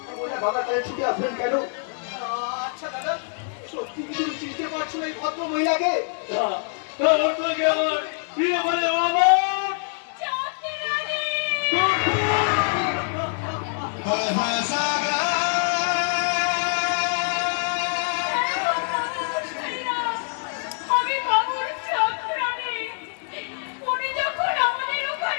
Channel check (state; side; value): silent; right; 62 dB below the other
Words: মহিলা দাদার কাছে ছুটে আসবেন কেন? আচ্ছা দাদা, সত্যি কি তুমি চিনতে পারছো এই ভদ্র মহিলাকে? আমার প্রিয় বলে বাবা